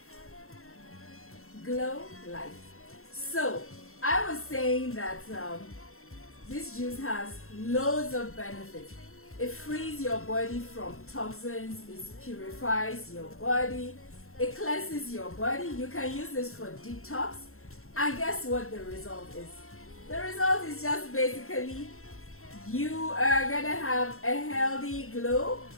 Glow life. So, I was saying that this juice has loads of benefits. It frees your body from toxins, it purifies your body, it cleanses your body. You can use this for detox. And guess what the result is? The result is just basically you are gonna have a healthy glow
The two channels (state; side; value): late; right; 0.62 ms